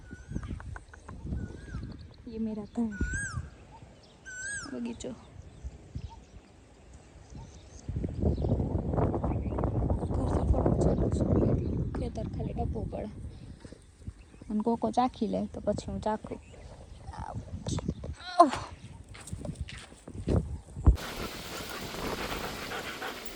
ये मेरा घर बगीचो. ખેતર ખાલી ટપવું પડે અને કોકો ચાખી લે તો પછી હું ચાખું.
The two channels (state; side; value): identical; both; correlation 1.00